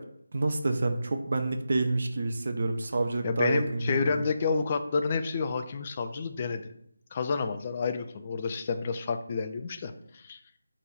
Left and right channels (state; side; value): inverted; both; correlation -0.84